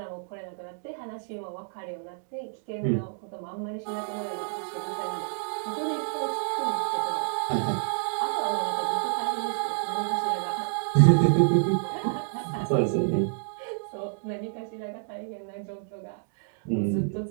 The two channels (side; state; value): left; silent; digital silence